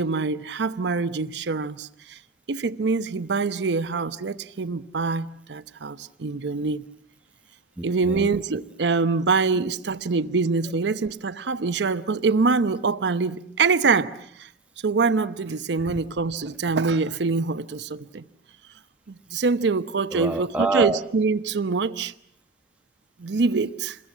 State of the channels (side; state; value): left; quieter; 3.9 dB